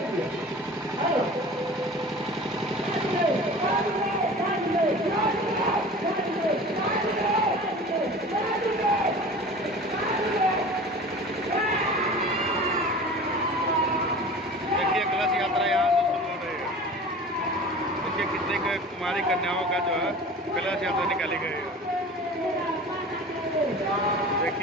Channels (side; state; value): both; normal; correlation 0.39